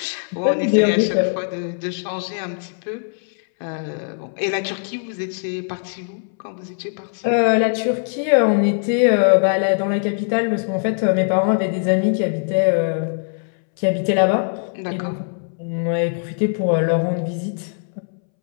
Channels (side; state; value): right; silent; 65 dB below the other